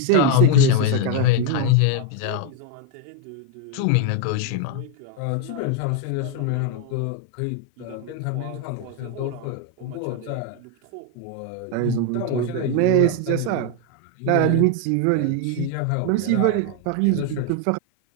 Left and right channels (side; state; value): both; different; correlation 0.01